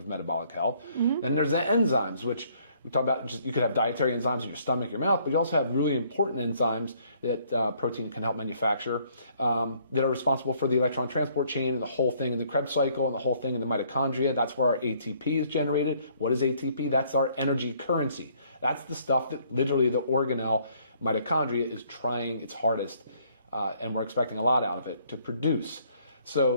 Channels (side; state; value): both; inverted; correlation -0.64